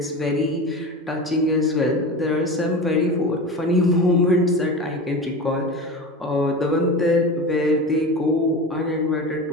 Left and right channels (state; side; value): normal; both; correlation 0.29